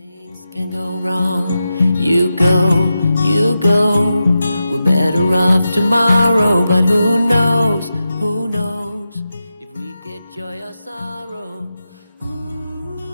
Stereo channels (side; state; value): both; inverted; correlation -0.90